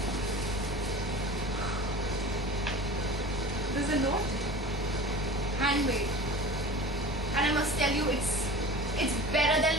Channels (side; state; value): both; normal; correlation 0.37